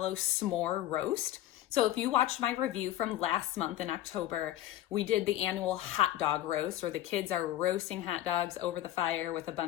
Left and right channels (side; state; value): right; quieter; 13.7 dB